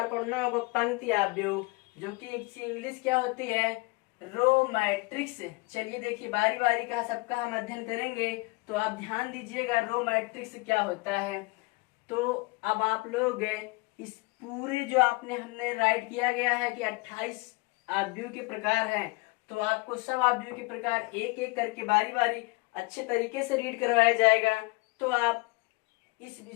पढ़ना होगा पंक्ति आव्यूह, जो कि इंग्लिश क्या होती है, रो मैट्रिक्स। चलिए देखिए, बारी बारी का सबका हम अध्ययन करेंगे, तो आप ध्यान दीजिएगा रो मैट्रिक्स क्या होता है। तो अब आप लोग इस पूरे जो हमने राइट किया गया है कि 28 आव्यूह के प्रकार हैं, तो आपको सब आव्यूह के प्रकार एक एक करके बारी बारी अच्छे तरीके से रीड करवाया जाएगा। तो आप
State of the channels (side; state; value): right; quieter; 25.8 dB